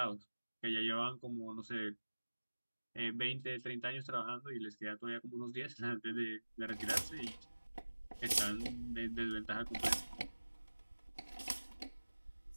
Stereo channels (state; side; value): inverted; both; correlation -1.00